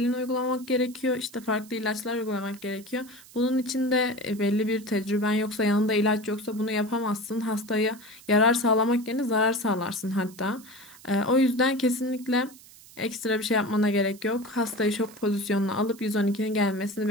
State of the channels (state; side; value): noise; right; hiss, 21 dB below the sound